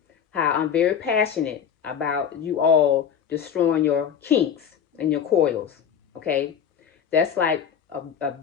how I'm very passionate about you all destroying your kinks and your coils. Okay, that's like a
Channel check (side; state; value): right; quieter; 8.0 dB